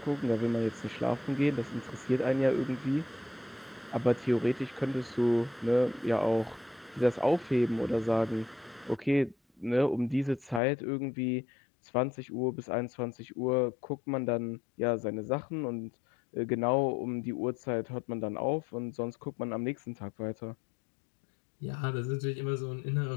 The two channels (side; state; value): right; drops out; at 10.6 s